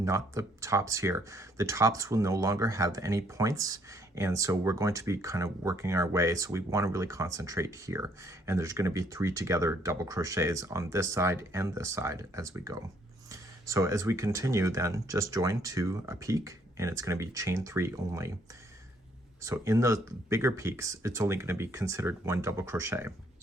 the tops here. The tops will no longer have any points, and so we're going to be kind of working our way, so we want to really concentrate here. And there's going to be 3 together double crochets on this side and this side as we go. So as we continue, then just join to a peak, and it's going to be chain 3 only. So in those bigger peaks, it's only going to be considered 1 double crochet.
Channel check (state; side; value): normal; both; correlation 0.66